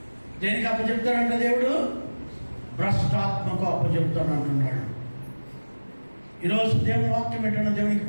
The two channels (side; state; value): both; inverted; correlation -1.00